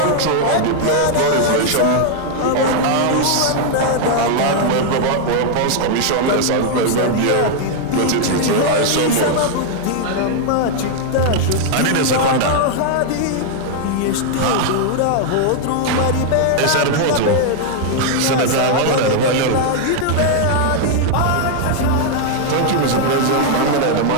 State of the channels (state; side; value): different; both; correlation 0.00